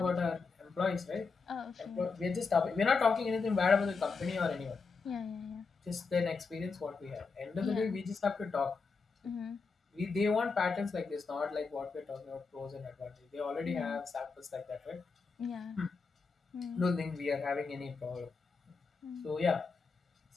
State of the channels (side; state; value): right; quieter; 4.7 dB